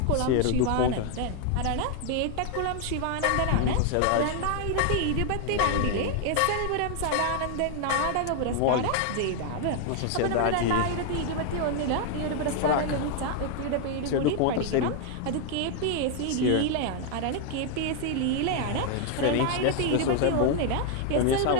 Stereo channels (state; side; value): different; both; correlation 0.00